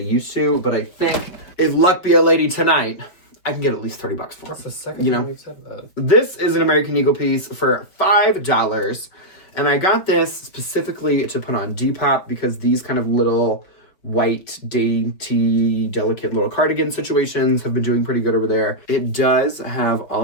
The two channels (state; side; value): late; right; 5.2 ms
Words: to, but I think if luck be a lady tonight, I can get at least $30 for them. That's the second time you've said that. This is an American Eagle piece for $5. And I got this specifically to put on Depop because these kind of little white, dainty, delicate little cardigan situations have been doing pretty good over there. It does have all